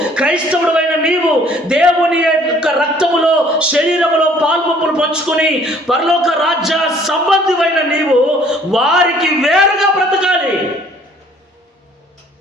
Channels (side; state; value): both; normal; correlation 0.57